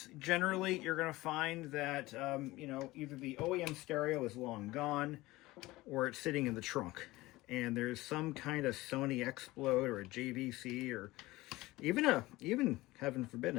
generally, you're going to find that, you know, either the OEM stereo is long gone or it's sitting in the trunk. And there's some kind of Sony Explode or a JVC or even, heaven forbid,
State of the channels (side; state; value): right; quieter; 19.2 dB